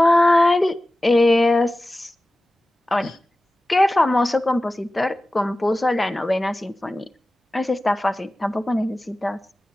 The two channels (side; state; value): both; normal; correlation 0.95